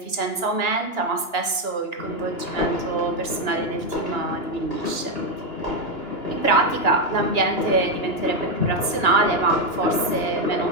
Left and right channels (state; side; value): late; right; 2.9 ms